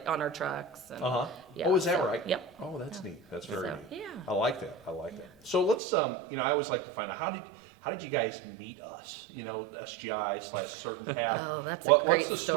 on our trucks. And, Uh-huh. yeah, Oh, is that so- right? Yep. Oh, that's neat. That's very So, neat. yeah. I like that. I like that. So let's, I always like to find out, how did you guys meet us? SGI/Certain Path. Oh, that's a What's great the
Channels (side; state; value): left; drops out; at 5.8 s